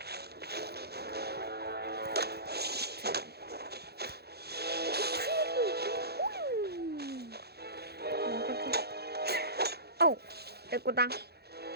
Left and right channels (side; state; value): left; late; 0.47 ms